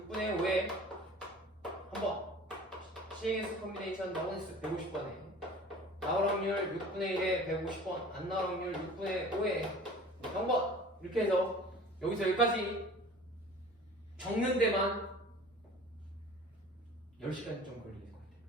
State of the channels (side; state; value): both; normal; correlation 0.44